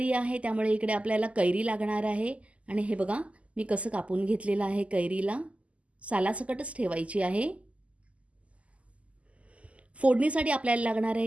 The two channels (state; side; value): late; left; 0.064 ms